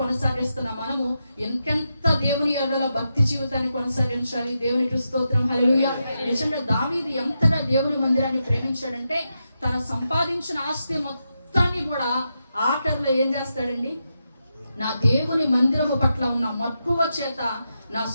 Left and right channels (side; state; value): both; inverted; correlation -0.86